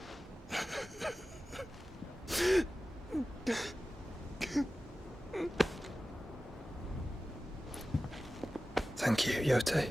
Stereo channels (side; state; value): both; normal; correlation 0.96